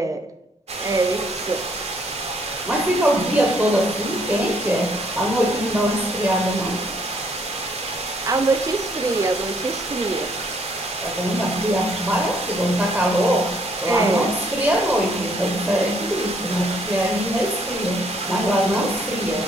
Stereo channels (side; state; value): both; normal; correlation 0.66